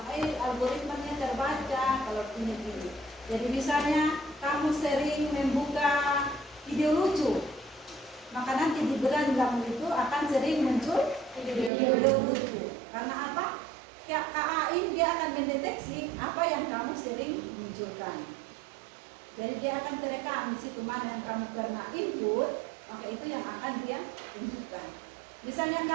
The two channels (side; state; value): left; drops out; at 11.7 s